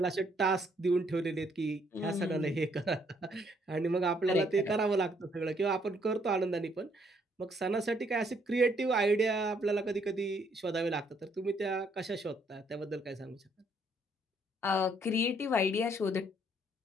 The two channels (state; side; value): normal; both; correlation 0.69